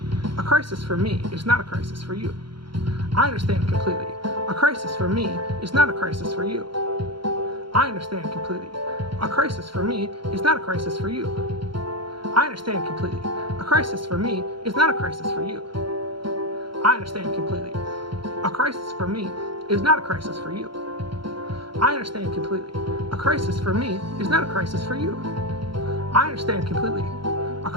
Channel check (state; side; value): late; left; 0.73 ms